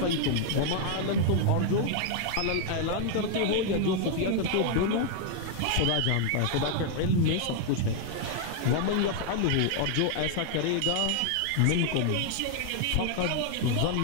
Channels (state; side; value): different; both; correlation 0.00